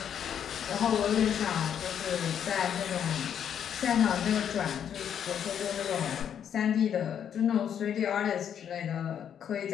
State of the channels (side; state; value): right; quieter; 8.8 dB